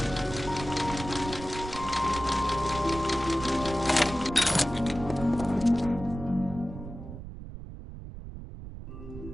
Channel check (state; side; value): noise; right; rumble, 11 dB below the sound